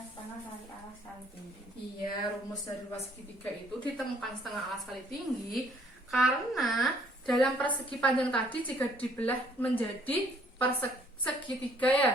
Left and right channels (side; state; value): both; normal; correlation 0.62